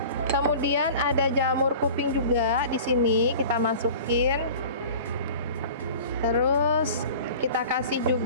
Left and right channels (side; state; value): both; inverted; correlation -0.41